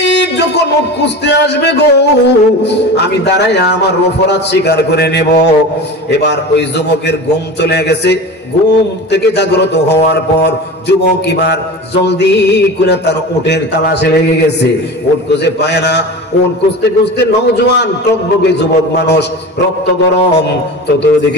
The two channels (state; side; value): normal; both; correlation 0.31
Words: যখন উট খুঁজতে আসবে গো, আমি দাঁড়াইয়া আমার অপরাধ স্বীকার করে নেব। এবার ওই যুবকের ঘুম চলে গেছে। ঘুম থেকে জাগ্রত হওয়ার পর যুবক এবার জলদি করে তার উটের তালাশে লেগে গেছে। উট খুঁজে পায় না। উট খুঁজতে খুঁজতে নওজোয়ান টকবকে যুবক মানুষ, রক্ত গরম,